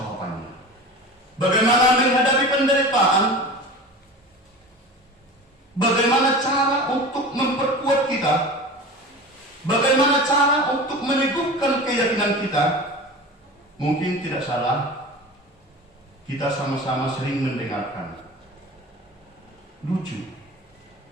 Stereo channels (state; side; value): normal; both; correlation 0.34